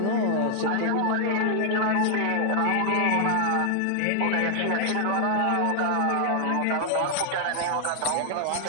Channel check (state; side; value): different; both; correlation 0.00